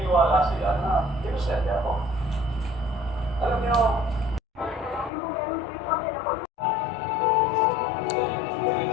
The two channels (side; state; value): right; drops out; at 5.1 s